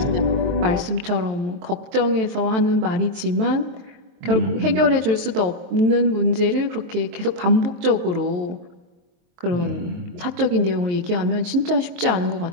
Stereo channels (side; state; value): left; late; 23 ms